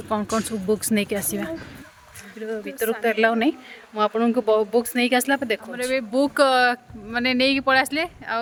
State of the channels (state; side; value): identical; both; correlation 1.00